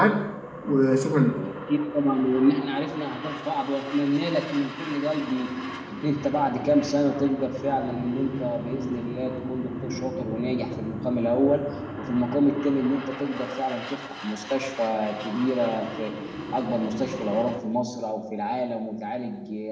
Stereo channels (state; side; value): identical; both; correlation 1.00